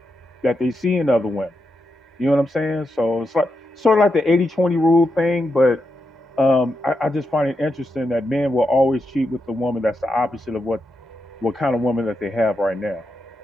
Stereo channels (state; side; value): normal; both; correlation 0.86